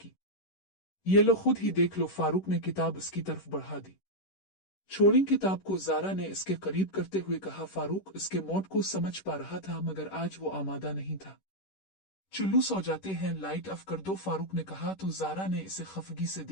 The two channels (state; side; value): late; right; 10 ms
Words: ये लो, खुद ही देख लो। फारूक ने किताब इसकी तरफ बढ़ा दी। छोड़ी किताब को ज़ारा ने इसके करीब करते हुए कहा। फारूक इसके मौत को समझ पा रहा था मगर आज वो आमादा नहीं था। चुल्लू सो जाते हैं, लाइट ऑफ कर दो, फारूक ने कहा तो ज़ारा ने इसे खफगी से